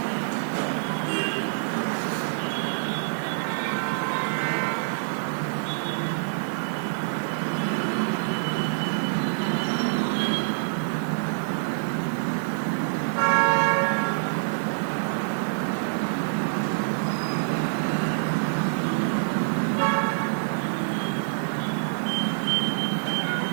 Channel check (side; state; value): left; silent; 55 dB below the other